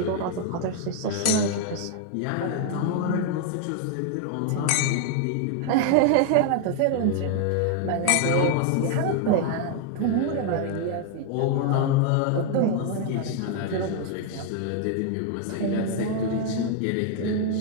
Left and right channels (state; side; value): different; both; correlation 0.00